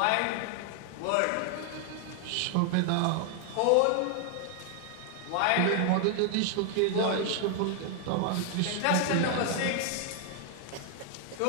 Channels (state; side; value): different; both; correlation 0.00